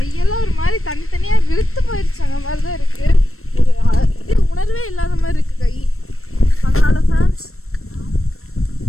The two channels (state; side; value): late; right; 0.62 ms